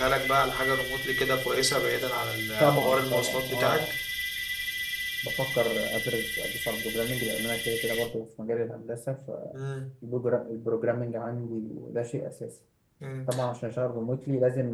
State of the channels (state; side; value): identical; both; correlation 1.00